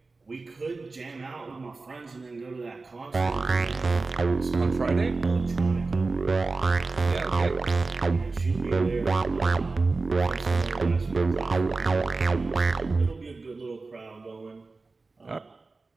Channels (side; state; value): left; quieter; 3.8 dB